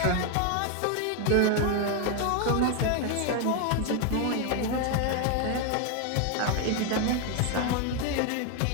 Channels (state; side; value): different; both; correlation 0.01